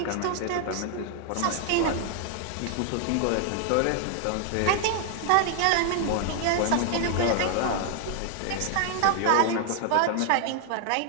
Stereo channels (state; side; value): different; both; correlation 0.00